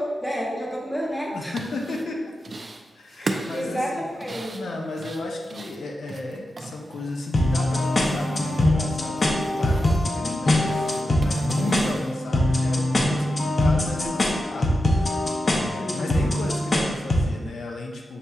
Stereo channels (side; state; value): both; normal; correlation 0.90